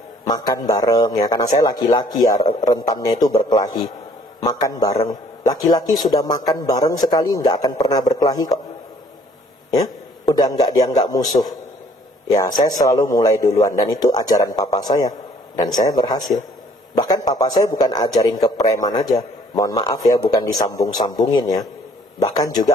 makan bareng ya. Karena saya laki-laki ya, rentannya itu berkelahi. Makan bareng. Laki-laki sudah makan bareng sekali nggak akan pernah berkelahi kok. Ya. Udah nggak dianggap musuh. Ya, saya selalu mulai duluan. Dan itu ajaran papa saya. Dan saya berhasil. Bahkan papa saya bukan ajarin ke preman aja. Mohon maaf ya, bukan disambung-sambungin ya. Bahkan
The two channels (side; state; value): both; normal; correlation 0.59